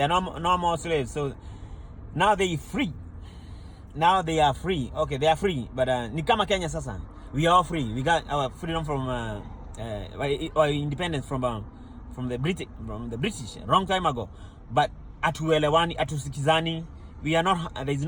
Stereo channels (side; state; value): both; identical; correlation 1.00